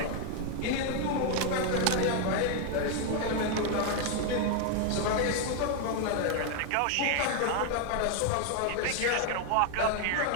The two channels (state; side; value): different; both; correlation 0.00